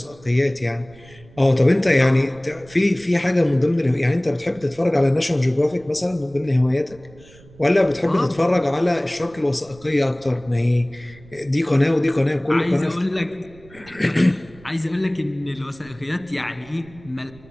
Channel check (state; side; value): noise; right; rumble, 24 dB below the sound